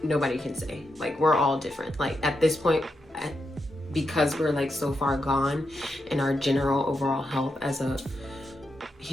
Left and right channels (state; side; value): normal; both; correlation 0.85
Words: nobody can say. Like, we're all different. Like, at this point, because we're like so far gone in our general overall health as a